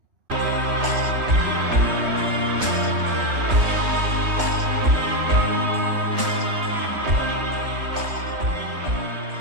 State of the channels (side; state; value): left; late; 3.1 ms